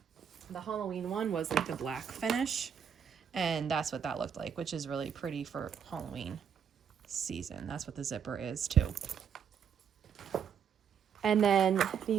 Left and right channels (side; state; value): left; quieter; 7.7 dB